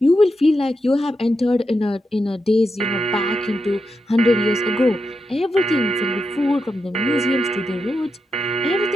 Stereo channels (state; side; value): normal; both; correlation 0.86